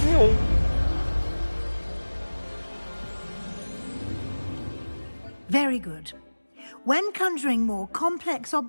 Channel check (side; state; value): both; inverted; correlation -1.00